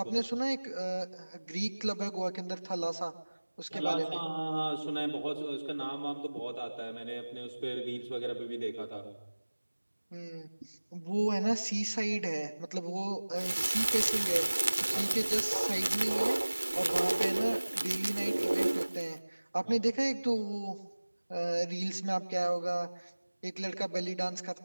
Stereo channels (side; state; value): both; inverted; correlation -1.00